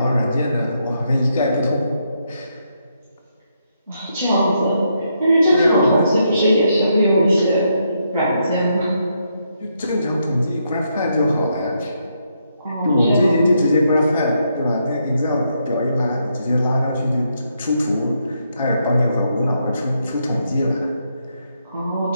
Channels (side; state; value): both; inverted; correlation -0.78